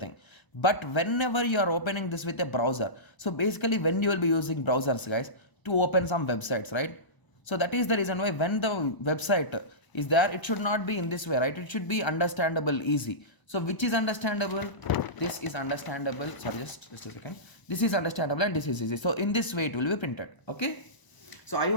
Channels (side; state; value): right; late; 1.0 ms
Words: But whenever you are opening this with a browser, so basically when you will be using browsers, guys, to open some websites, right? So that is the reason why when the website is there, it should not be in this way, right? It should be understandable, easy. So which is understandable? This is understandable. Sorry, just a second. This is understandable and this is easy. So in this way it will be printed. Okay. So I